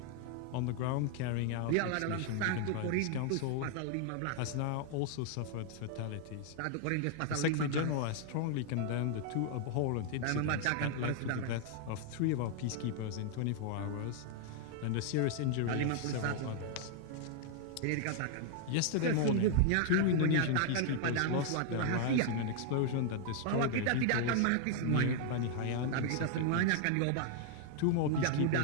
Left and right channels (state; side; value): different; both; correlation 0.00